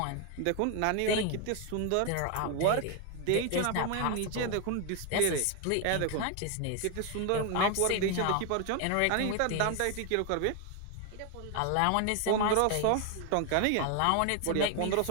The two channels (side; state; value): both; different; correlation 0.01